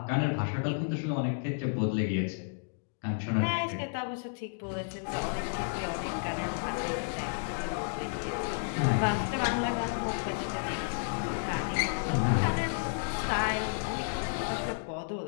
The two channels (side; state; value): right; silent; digital silence